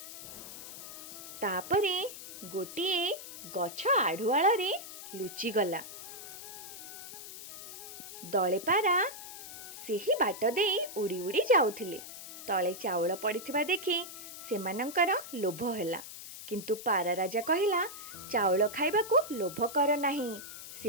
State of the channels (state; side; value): noise; left; hiss, 12 dB below the sound